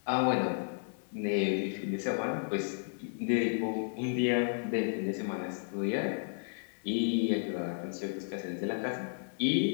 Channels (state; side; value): silent; right; digital silence